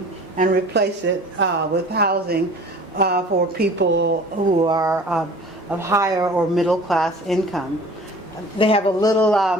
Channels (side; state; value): both; normal; correlation 0.45